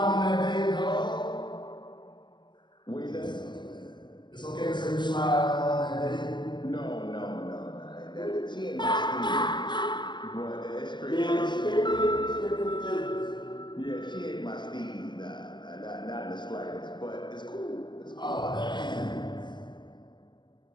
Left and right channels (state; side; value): late; right; 0.22 ms